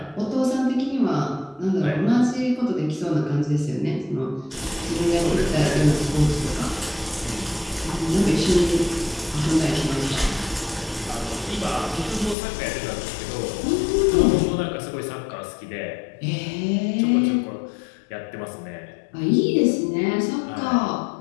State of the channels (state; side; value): drops out; right; at 12.4 s